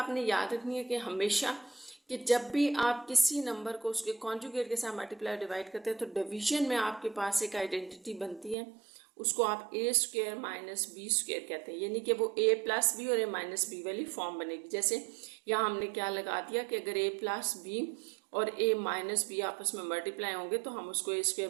याद रखनी है कि हमेशा कि जब भी आप किसी नंबर को उसके कॉन्जुगेट के साथ मल्टीप्लाई डिवाइड करते हैं तो डिवीजन में आपके पास एक आइडेंटिटी बनती है, उसको आप a² - b² कहते हैं, यानी कि वो a + b और a - b वाली फॉर्म बनेगी। जैसे यहाँ हमने क्या लगा दिया कि अगर a + b और a - b आपस में मल्टीप्लाई होंगे तो हम उसको a²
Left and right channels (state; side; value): drops out; left; at 8.6 s